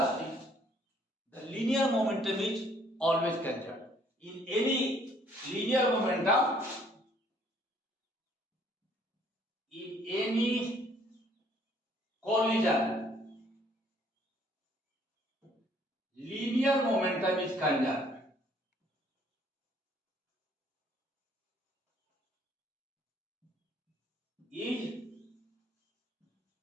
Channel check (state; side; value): normal; both; correlation 0.62